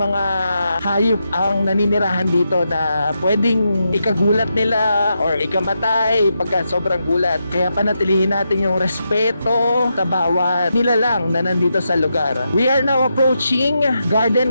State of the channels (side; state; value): both; inverted; correlation -0.85